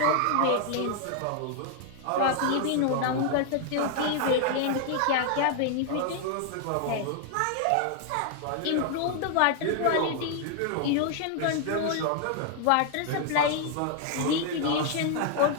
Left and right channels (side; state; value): both; different; correlation 0.00